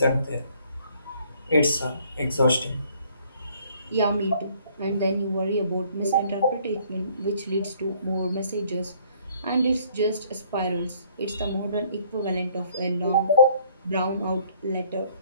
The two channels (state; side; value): inverted; both; correlation -0.61